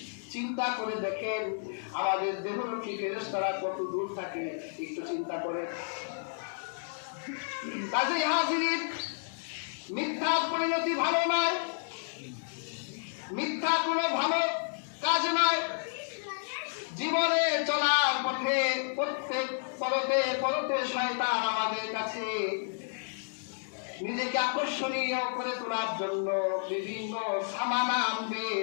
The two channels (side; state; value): right; silent; digital silence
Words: চিন্তা করে দেখেন আমাদের দেহরক্ষী ফেরেশতারা কত দূর থাকে, একটু চিন্তা করে। কাজেই হাজির, মিথ্যার পরিণতি ভালো নয়, মিথ্যা কোনো ভালো কাজ নয়। জীবনে চলার পথে প্রত্যেক পরতে পরতে শয়তান আমাদের কাছে নিজেকে আকর্ষণীয় করে তোলার জন্য বিভিন্ন সামানা আনবে,